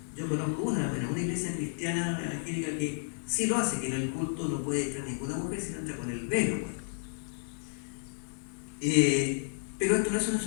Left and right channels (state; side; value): silent; right; 57 dB below the other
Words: Yo conozco una iglesia cristiana evangélica que sí lo hace, que en el culto no puede entrar ninguna mujer, sino entra con el velo. Pues. Pero esto no es un